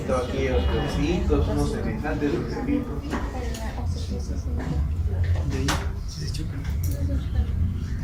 aquí hay osteofitos, unos semejantes osteofitos.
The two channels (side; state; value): both; identical; correlation 1.00